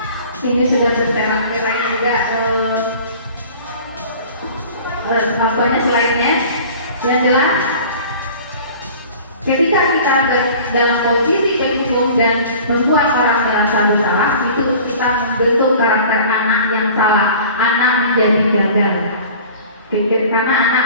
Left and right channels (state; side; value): inverted; both; correlation -0.44